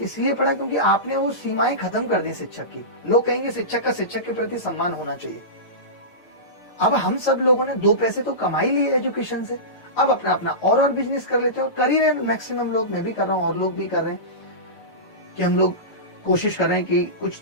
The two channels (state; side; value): late; right; 6.6 ms